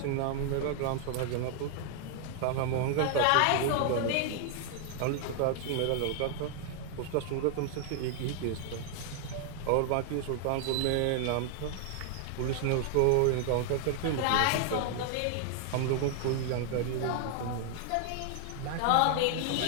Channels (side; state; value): both; different; correlation 0.00